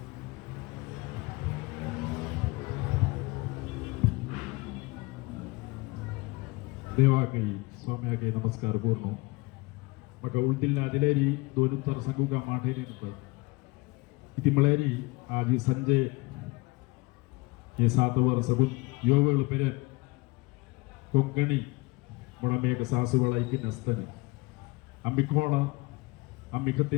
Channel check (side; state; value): right; quieter; 23.6 dB